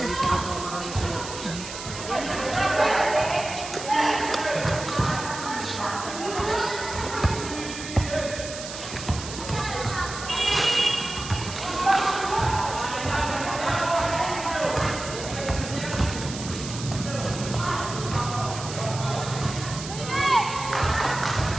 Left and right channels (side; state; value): right; noise; hiss, 10 dB below the sound